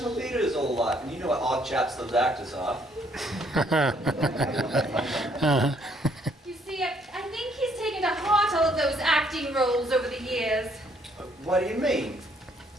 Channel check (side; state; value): both; normal; correlation 0.66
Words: theatre his whole life, and you know what odd chaps those actors are. You see, I think he's taken to heart all of those acting roles over the years. What do you mean?